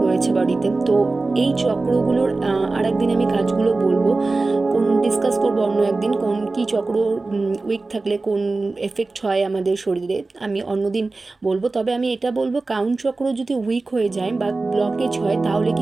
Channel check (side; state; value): left; quieter; 3.5 dB